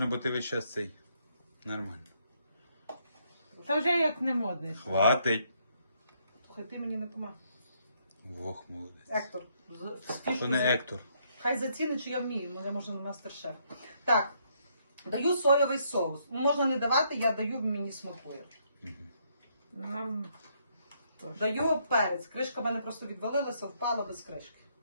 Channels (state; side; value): inverted; both; correlation -0.72